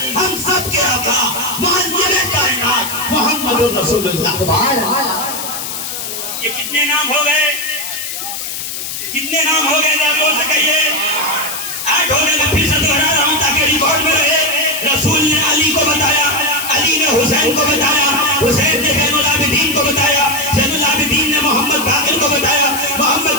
ہم سب کے آقا معلم کائنات محمد رسول اللہ. یہ کتنے نام ہو گئے؟ کتنے نام ہو گئے؟ زور سے کہیے. 8 ہو گئے. میں پھر سے دوہرا رہا ہوں تاکہ ریکارڈ میں رہے. رسول نے علی کو بتایا, علی نے حسین کو بتایا, حسین نے زین العابدین کو بتایا, زین العابدین نے محمد باقر کو بتایا,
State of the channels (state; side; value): noise; left; hiss, 6 dB below the sound